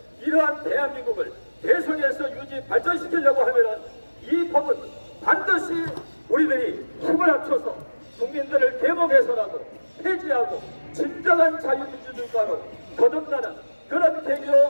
이러한 대한민국을 대선에서 유지 발전시키려고 하면은 이 법은 반드시 우리들이 힘을 합쳐서 국민들을 계몽해서라도 폐지하고 진정한 자유민주주의가로 거듭나는 그런 계기로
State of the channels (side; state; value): both; inverted; correlation -1.00